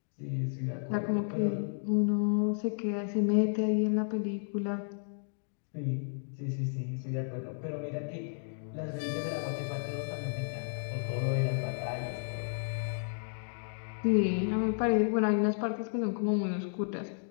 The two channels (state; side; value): silent; right; digital silence